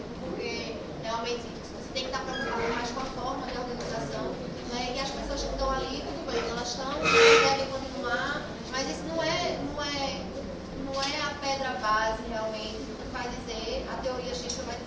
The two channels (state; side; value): identical; both; correlation 1.00